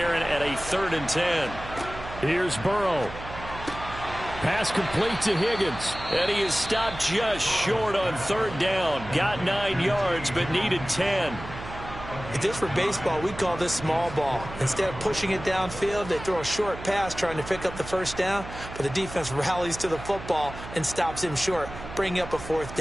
at a 3rd and 10. Here's Burrow. Pass complete to Higgins. And he is stopped just short on 3rd down. Got 9 yards, but needed 10. If this were baseball, we'd call this small ball. Instead of pushing it downfield, they throw a short pass trying to pick up the first down, but the defense rallies to the football and stops him short, bringing up a 4th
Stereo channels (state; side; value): noise; right; hum, 12 dB below the sound